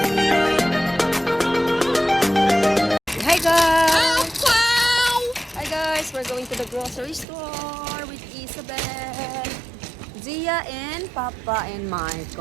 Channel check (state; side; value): drops out; left; at 7.2 s